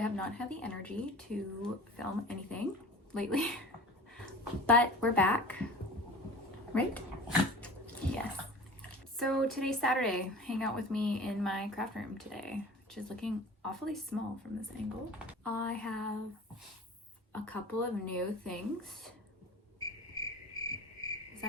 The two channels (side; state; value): both; normal; correlation 0.39